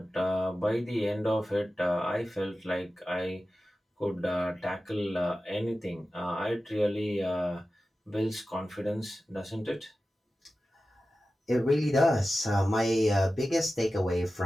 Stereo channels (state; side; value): normal; both; correlation 0.94